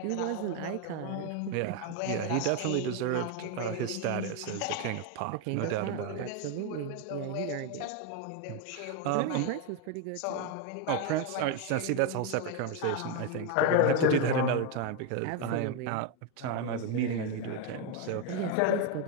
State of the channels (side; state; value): both; different; correlation 0.02